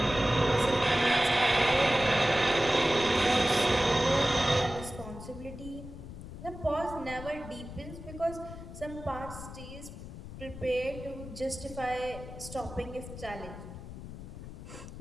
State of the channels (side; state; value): left; noise; rumble, 12 dB below the sound